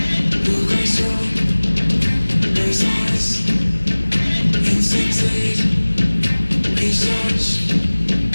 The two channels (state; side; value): inverted; both; correlation -1.00